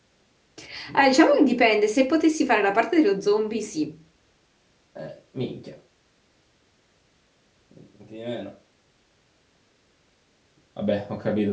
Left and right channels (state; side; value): identical; both; correlation 1.00